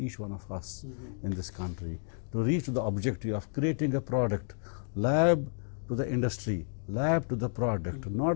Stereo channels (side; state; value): right; silent; digital silence